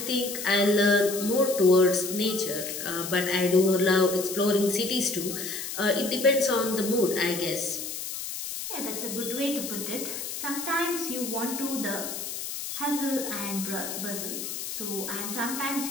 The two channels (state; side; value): noise; left; hiss, 6 dB below the sound